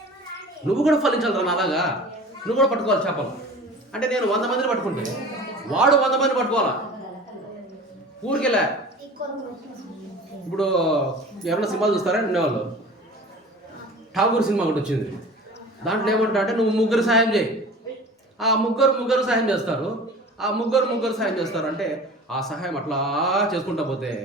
నువ్వు కూడా ఫలించాలి రా అలాగా. నువ్వు కూడా పట్టుకోవాలి చేపలు. అంటే నేను 100 మందిని పట్టుకుంటే వాడు 100 మందిని పట్టుకోవాలా ఊరికెళ్ళా. ఇప్పుడు ఎవరైనా సినిమాలు చూస్తారా ఉండేవాళ్ళు, ఠాగూర్ సినిమా ఒకటి వచ్చింది. దాంట్లో ఏమంటా అంటే నువ్వు 3 సాయం చేయి. ఆ ముగ్గురు సాయం చేస్తారు. ఆ ముగ్గురు సాయం చేస్తారు. అంటే ఆ సహాయం అట్లా చేసుకుంటా పోతే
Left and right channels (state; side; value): normal; both; correlation 0.40